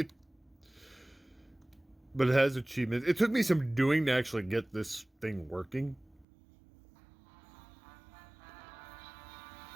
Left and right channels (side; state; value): left; drops out; at 6.2 s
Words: it has achievements. It took me some doing to actually get this thing working.